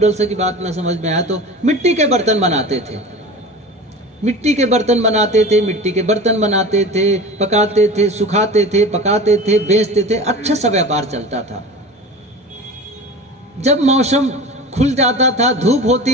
की बात ना समझ में आया तो मिट्टी के बर्तन बनाते थे, मिट्टी के बर्तन बनाते थे, पकाते थे, सुखाते थे, पकाते थे, बेचते थे, अच्छा सा व्यापार चलता था। जब मौसम खुल जाता था, धूप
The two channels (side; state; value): both; normal; correlation 0.35